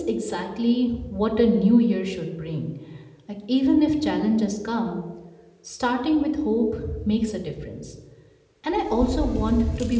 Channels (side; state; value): both; identical; correlation 1.00